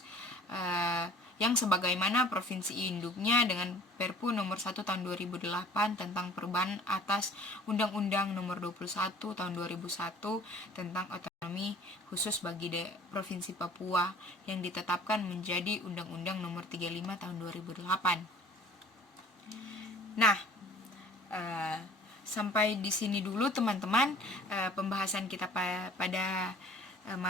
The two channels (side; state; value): both; normal; correlation 0.50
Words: yang sebagaimana provinsi induknya dengan Perpu Nomor 1 Tahun 2008 tentang perubahan atas Undang-Undang Nomor 21 Tahun 2001 tentang otonomi khusus bagi Provinsi Papua yang ditetapkan menjadi Undang-Undang Nomor 35 Tahun 2008. Nah, sampai di sini dulu teman-teman pembahasan kita pada